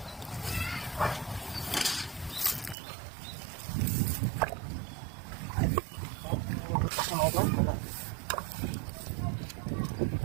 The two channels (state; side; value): drops out; left; at 2.8 s